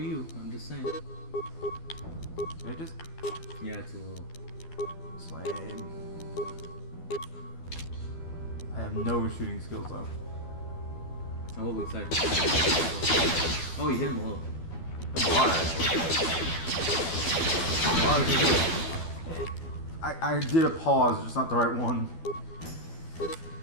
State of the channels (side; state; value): right; late; 12 ms